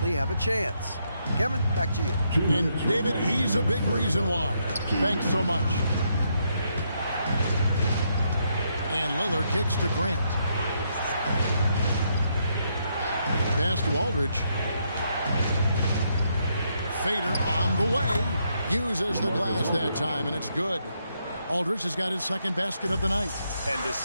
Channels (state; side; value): inverted; both; correlation -0.77